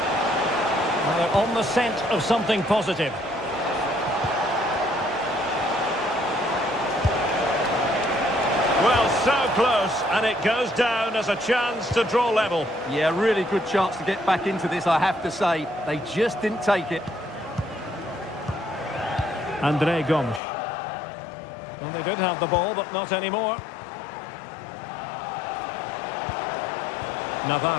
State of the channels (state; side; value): drops out; right; at 20.4 s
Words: Well, they're on the scent of something positive. Well, so close, and it goes down as a chance to draw level. Yeah, really good chance to get back into this, I have to say. They just didn't take it. André Gomes. Well, they did have the ball, but not anymore.